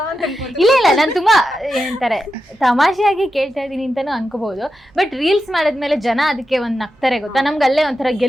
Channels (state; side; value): normal; both; correlation 0.89